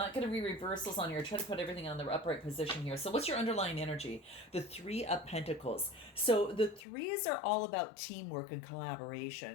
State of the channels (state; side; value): drops out; right; at 6.8 s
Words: going to read reversals on here. Try to put everything on the upright position here. So what's your underlying energy? The Three of Pentacles. So the threes are all about teamwork and